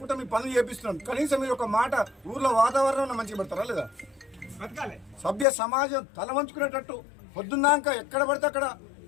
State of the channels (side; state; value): right; drops out; at 5.5 s